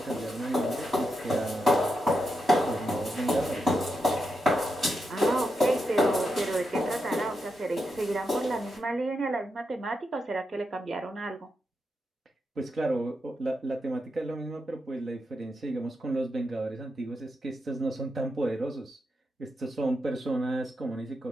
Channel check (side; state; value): both; normal; correlation 0.85